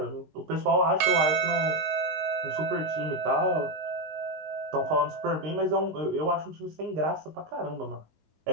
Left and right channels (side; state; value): left; late; 19 ms